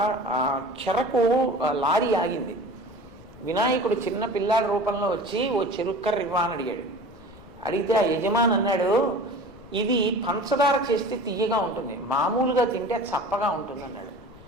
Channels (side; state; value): left; noise; rumble, 21 dB below the sound